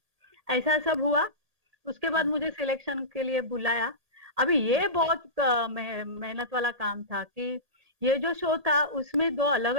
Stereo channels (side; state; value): left; late; 2.4 ms